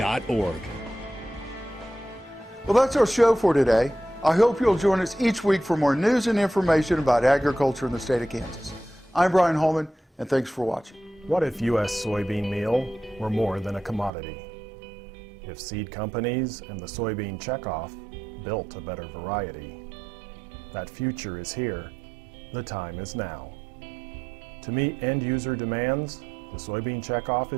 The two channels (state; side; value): drops out; left; at 14.1 s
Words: Well, that's our show for today. I hope you'll join us each week for more news and information about agriculture in the state of Kansas. I'm Brian Holman, and thanks for watching. What if U.S. soybean meal were more than a commodity? If seed companies and the soybean checkoff built a better variety? That future is here. The time is now. To meet end-user demands, the soybean checkoff